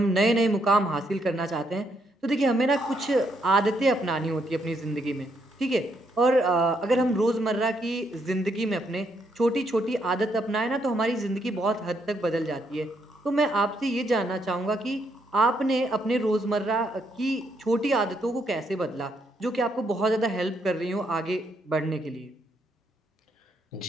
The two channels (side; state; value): both; normal; correlation 0.75